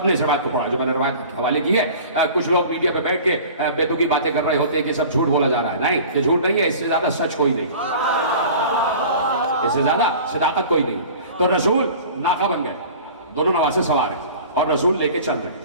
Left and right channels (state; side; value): inverted; both; correlation -0.42